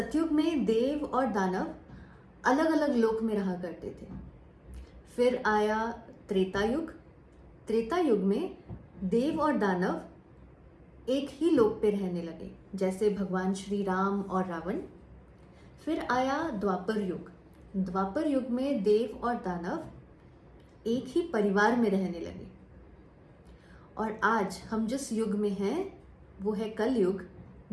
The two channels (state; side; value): identical; both; correlation 1.00